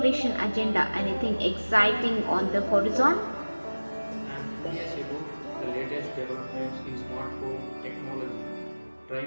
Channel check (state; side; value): inverted; both; correlation -1.00